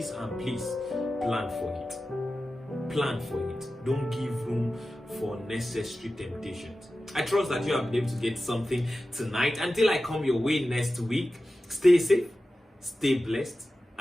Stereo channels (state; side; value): normal; both; correlation 0.94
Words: plan for it. Plan for it. Don't give room for unnecessary temptations. I trust that you have been able to get something tonight. Until I come your way next week, stay safe, stay blessed,